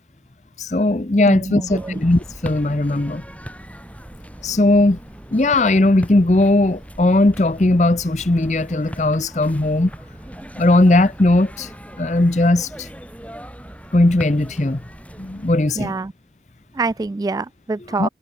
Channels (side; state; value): both; normal; correlation 0.73